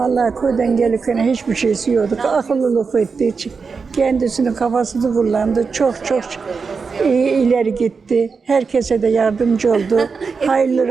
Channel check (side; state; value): left; quieter; 5.1 dB